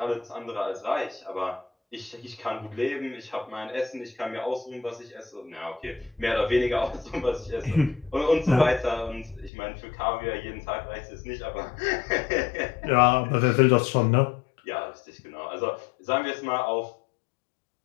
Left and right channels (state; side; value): drops out; right; at 9.5 s